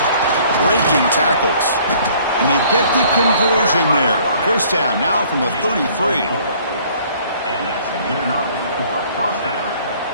Breaking tackles. And they get the conversion there. First down now from the 33. And that's good enough for a first down.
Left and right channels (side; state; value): both; inverted; correlation -0.57